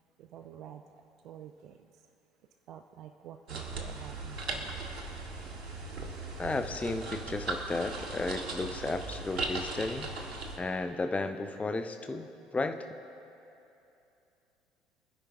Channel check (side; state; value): both; normal; correlation 0.69